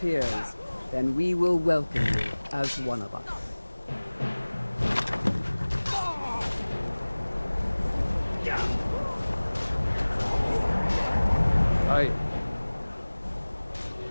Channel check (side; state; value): both; inverted; correlation -1.00